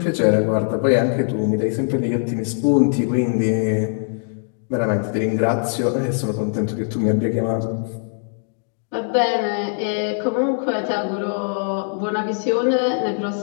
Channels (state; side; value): silent; right; digital silence